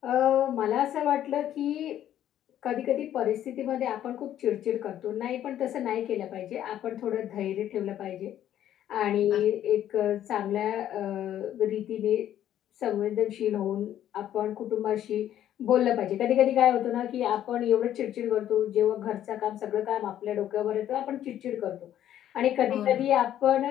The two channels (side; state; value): right; quieter; 11.4 dB